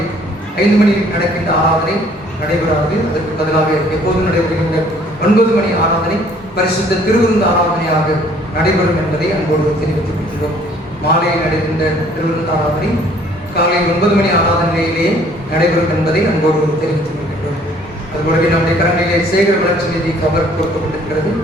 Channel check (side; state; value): both; normal; correlation 0.58